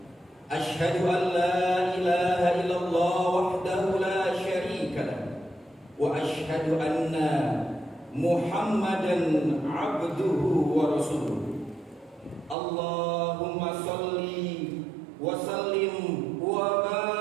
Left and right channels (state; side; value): drops out; left; at 12.6 s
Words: أشهد أن لا إله إلا الله وحده لا شريك له وأشهد أن محمدا عبده ورسوله اللهم صل وسلم